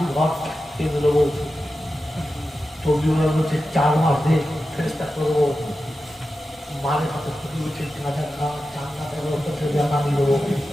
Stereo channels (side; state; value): both; normal; correlation 0.92